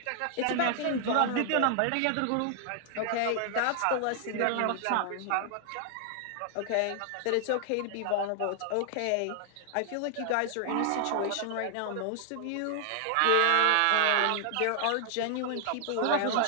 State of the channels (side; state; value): both; different; correlation 0.00